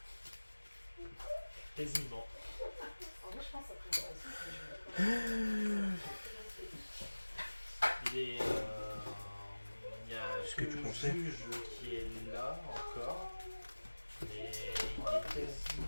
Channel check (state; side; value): inverted; both; correlation -1.00